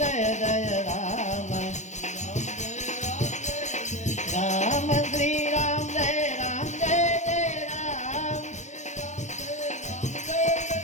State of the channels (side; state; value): right; late; 0.34 ms